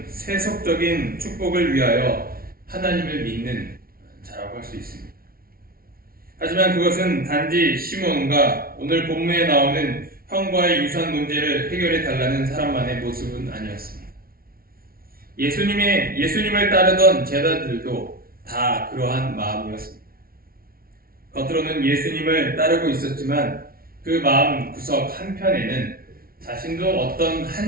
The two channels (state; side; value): late; left; 0.43 ms